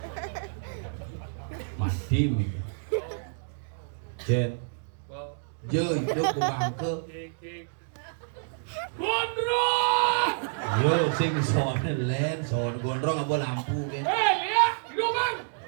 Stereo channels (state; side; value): silent; left; digital silence